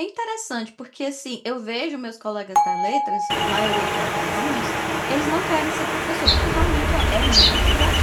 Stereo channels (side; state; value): both; identical; correlation 1.00